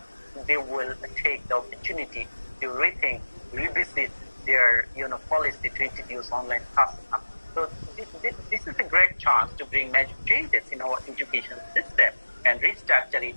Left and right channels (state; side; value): inverted; both; correlation -1.00